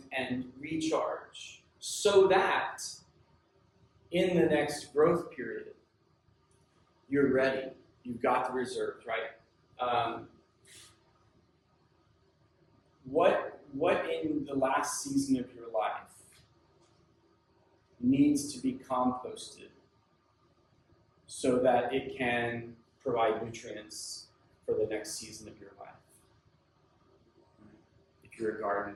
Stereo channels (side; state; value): both; identical; correlation 1.00